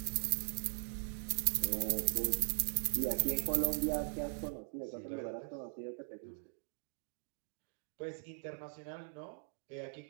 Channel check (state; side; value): silent; left; digital silence